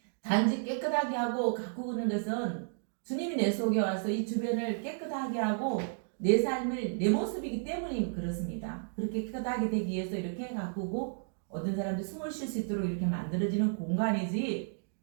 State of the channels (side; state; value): left; silent; digital silence